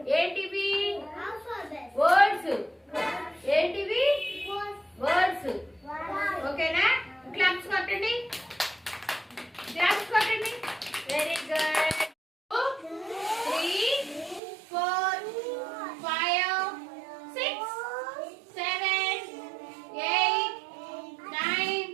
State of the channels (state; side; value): drops out; left; at 14.4 s